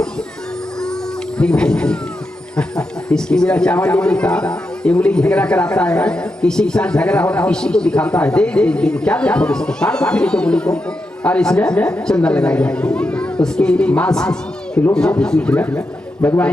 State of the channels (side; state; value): both; normal; correlation 0.86